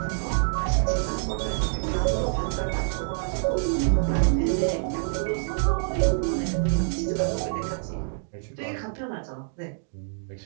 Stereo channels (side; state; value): left; silent; digital silence